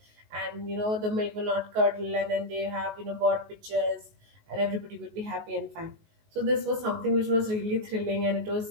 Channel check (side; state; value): left; late; 19 ms